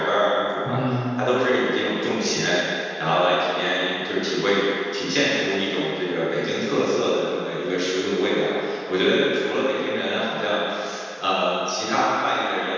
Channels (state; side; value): identical; both; correlation 1.00